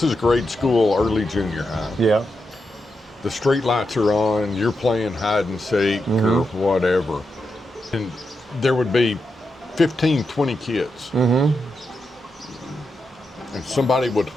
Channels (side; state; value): both; normal; correlation 0.86